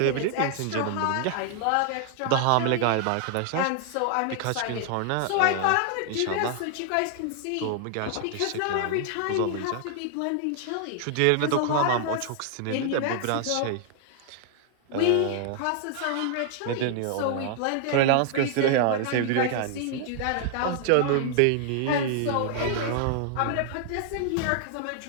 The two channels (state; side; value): different; both; correlation 0.00